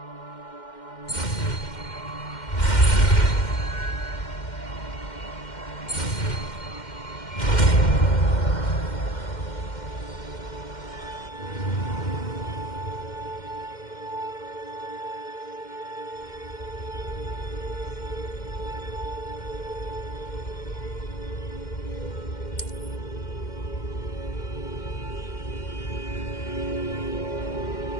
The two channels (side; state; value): right; late; 2.1 ms